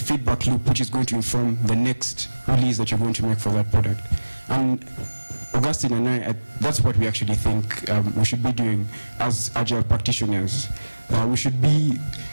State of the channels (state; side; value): inverted; both; correlation -1.00